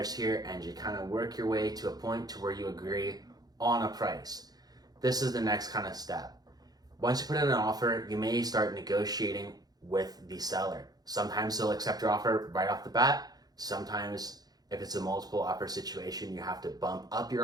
here, and you kind of work your way to a point to where you agree on a price. This is the next kind of step. Once you put in an offer, you may start negotiating with the seller. Sometimes they'll accept your offer right off the bat. Sometimes If it's a multiple offer situation, you have to bump up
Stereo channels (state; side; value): late; left; 0.19 ms